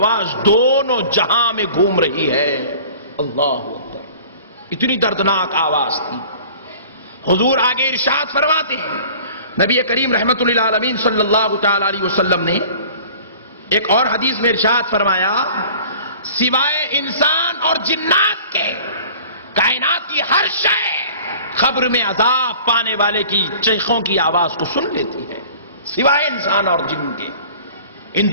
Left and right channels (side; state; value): both; inverted; correlation -0.46